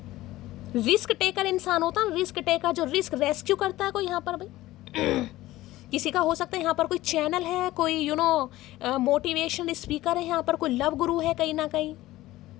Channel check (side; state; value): right; quieter; 16.7 dB